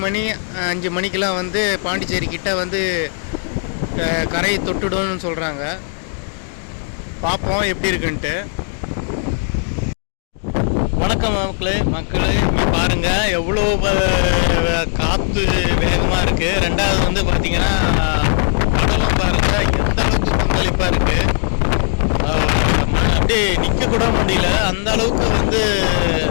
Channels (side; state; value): right; silent; 62 dB below the other